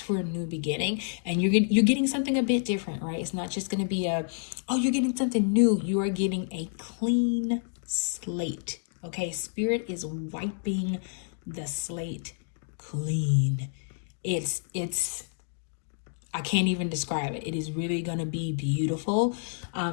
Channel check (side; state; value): right; silent; digital silence